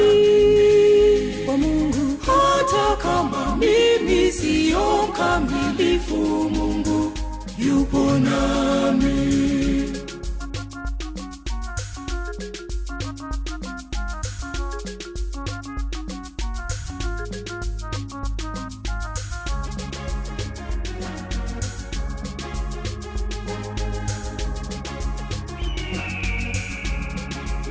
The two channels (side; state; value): both; identical; correlation 1.00